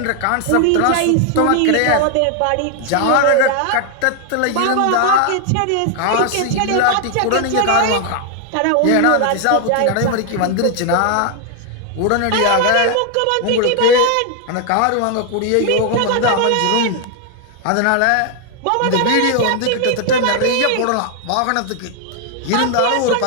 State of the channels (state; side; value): different; both; correlation 0.00